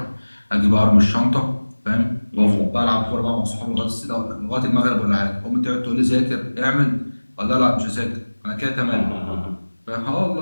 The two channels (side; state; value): both; inverted; correlation -1.00